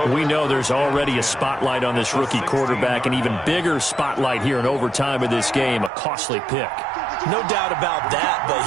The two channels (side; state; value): left; drops out; at 5.9 s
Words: We know there's already a spotlight on this rookie quarterback, an even bigger spotlight here in overtime of this game. A costly pick. No doubt about that, but